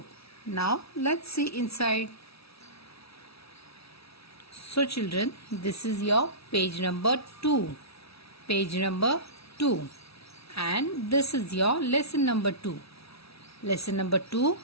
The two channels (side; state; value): right; late; 0.77 ms